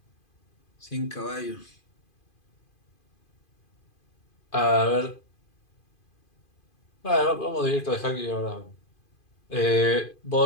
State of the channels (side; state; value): right; late; 2.5 ms